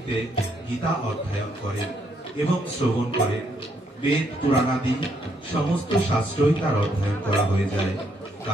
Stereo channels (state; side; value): normal; both; correlation 0.73